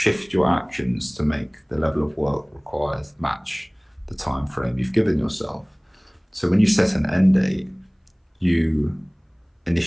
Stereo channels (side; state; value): both; identical; correlation 1.00